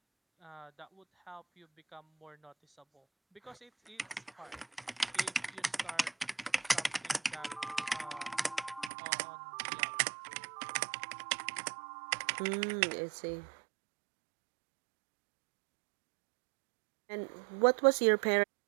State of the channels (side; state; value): left; drops out; at 8.9 s